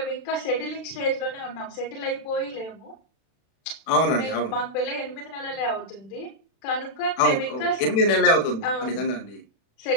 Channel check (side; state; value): right; late; 36 ms